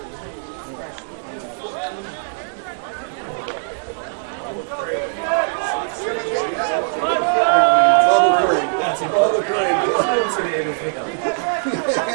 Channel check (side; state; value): left; silent; digital silence